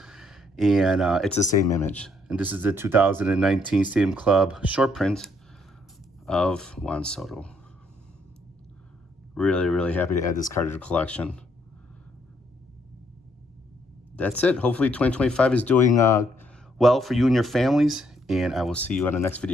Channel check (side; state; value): both; normal; correlation 0.70